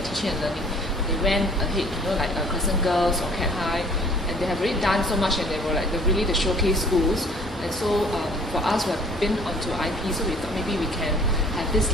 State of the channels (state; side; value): normal; both; correlation 0.54